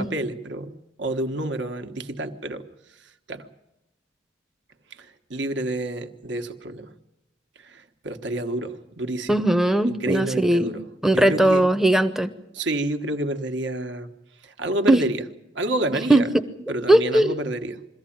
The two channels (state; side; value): normal; both; correlation 0.78